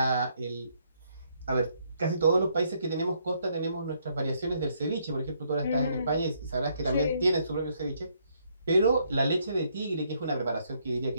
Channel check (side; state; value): both; inverted; correlation -0.72